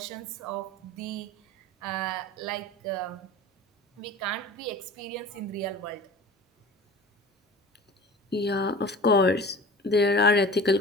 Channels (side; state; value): both; normal; correlation 0.39